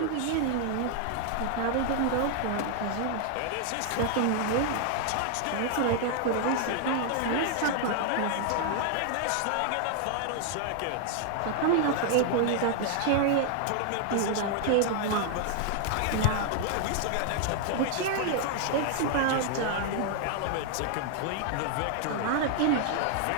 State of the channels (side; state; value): both; different; correlation 0.00